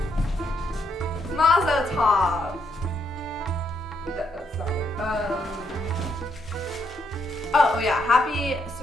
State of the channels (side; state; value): both; normal; correlation 0.76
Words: Mazel tov. That's not right. Oh yeah, happy